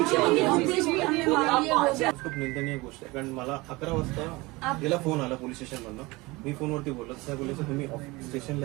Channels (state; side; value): quieter; left; 22.8 dB